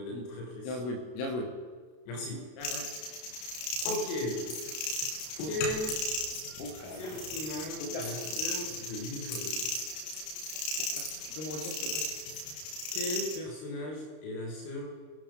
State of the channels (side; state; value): right; late; 32 ms